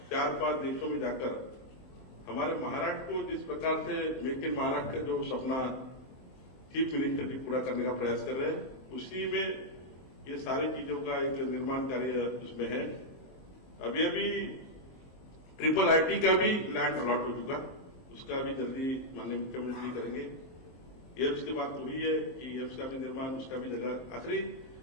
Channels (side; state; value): right; late; 23 ms